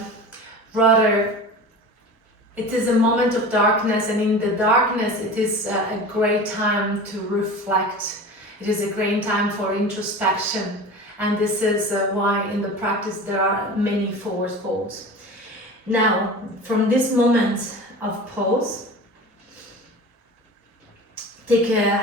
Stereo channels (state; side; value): normal; both; correlation 0.35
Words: rather it is a moment of darkness, and in the darkness it is a great time to reflect. It is a great time for introspection, and this is why in the practice there are many forward folds. Now, from this moment of pose,